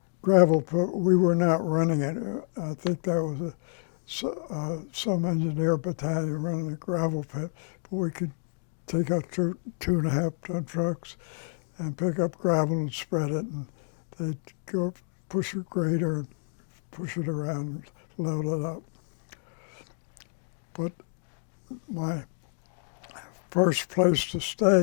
gravel pit. We were not running it. I think that was some engineer battalion running a gravel pit, but we could take out 2.5-ton trucks and pick up gravel and spread it, and they'd go push a grader and push it around and load it up. But my first place to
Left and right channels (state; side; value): silent; right; digital silence